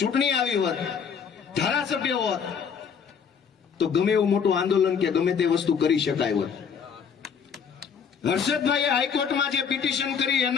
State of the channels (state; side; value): quieter; right; 6.8 dB